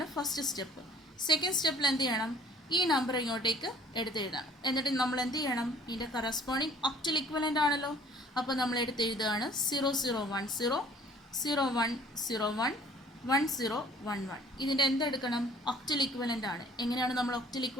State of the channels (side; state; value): both; normal; correlation 0.53